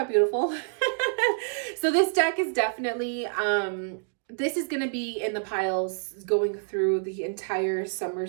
beautiful? So this deck is definitely, this is going to be in the piles going through the entire summer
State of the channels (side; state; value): left; silent; digital silence